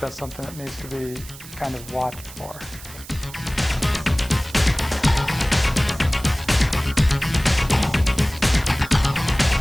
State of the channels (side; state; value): right; noise; hiss, 17 dB below the sound